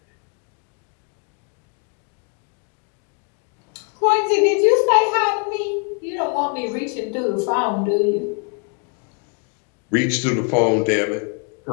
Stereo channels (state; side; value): quieter; right; 39.1 dB